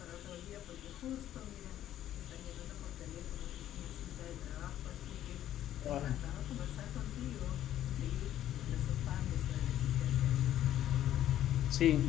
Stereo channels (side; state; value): right; quieter; 12.1 dB